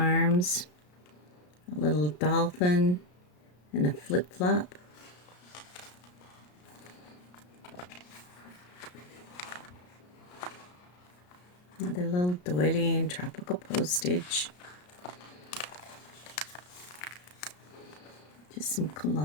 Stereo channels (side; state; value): right; late; 33 ms